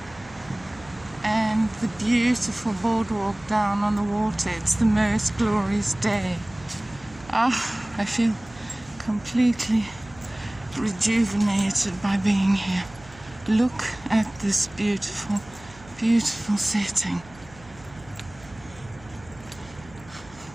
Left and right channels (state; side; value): noise; right; hum, 22 dB below the sound